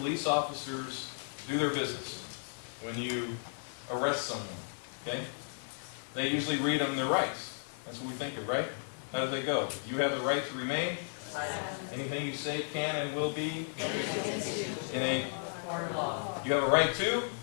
officers do their business when you arrest someone. Okay? They usually read them their rights. That's what we think of, right? How do they go? You have the right to remain. Anything you say can and will be in a Court of law. You have a right to?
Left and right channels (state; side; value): silent; right; digital silence